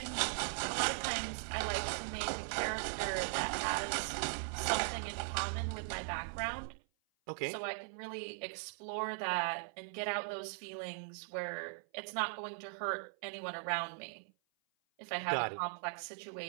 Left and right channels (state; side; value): silent; left; 51 dB below the other